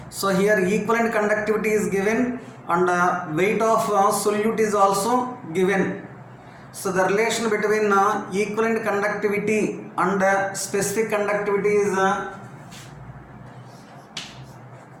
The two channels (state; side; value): identical; both; correlation 1.00